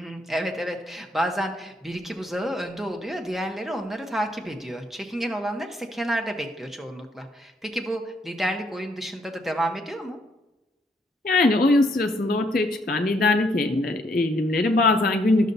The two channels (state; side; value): normal; both; correlation 0.71